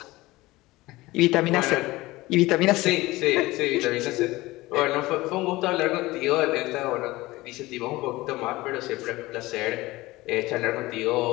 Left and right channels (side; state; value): right; quieter; 19.5 dB